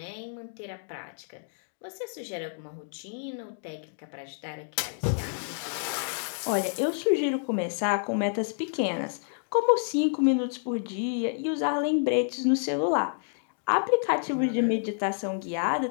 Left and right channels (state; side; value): silent; right; digital silence